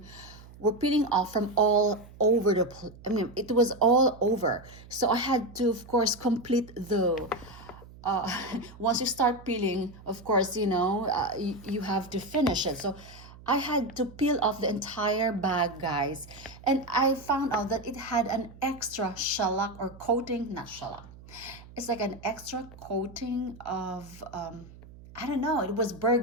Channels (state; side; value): noise; right; hum, 19 dB below the sound